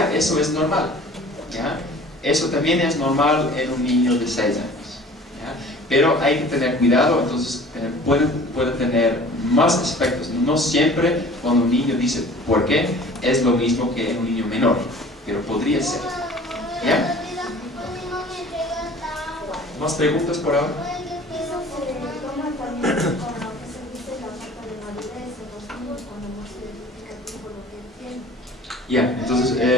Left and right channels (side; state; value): both; normal; correlation 0.46